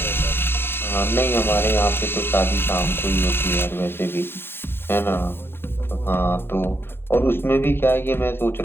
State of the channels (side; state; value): right; late; 0.11 ms